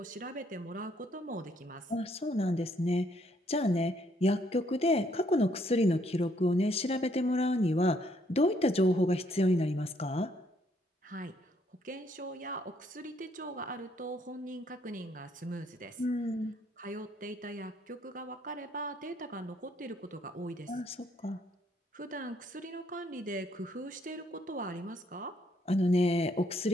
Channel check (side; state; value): both; normal; correlation 0.69